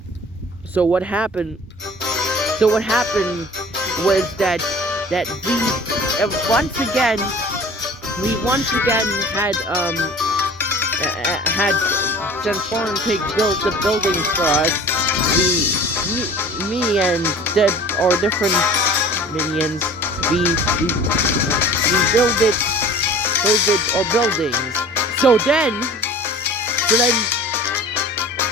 what happened? So what happened was that we once again had Transform Pig build the buildings for us. Me and our different minions, we build our buildings. So then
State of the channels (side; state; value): both; normal; correlation 0.44